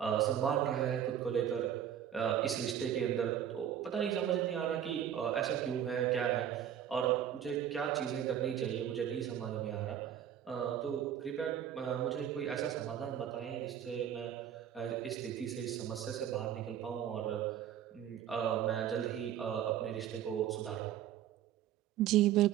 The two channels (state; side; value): quieter; left; 10.0 dB